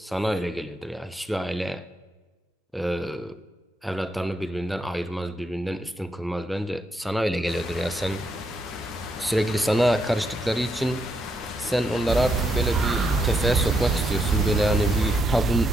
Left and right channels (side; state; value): both; normal; correlation 0.79